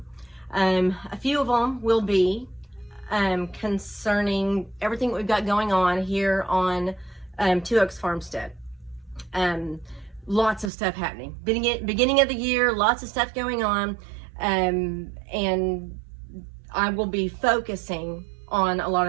A few of them will be concerning everything that we've got going on here on Two Oaks Farmstead. Lots of stuff happening. Beginning of the year, lots of stuff going on, and I will be focusing on a lot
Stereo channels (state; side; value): drops out; left; at 10.7 s